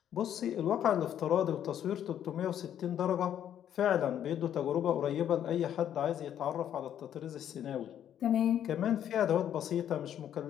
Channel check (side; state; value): right; quieter; 10.1 dB